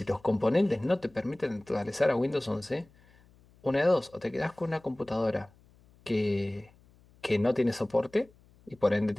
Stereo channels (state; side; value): noise; left; hum, 29 dB below the sound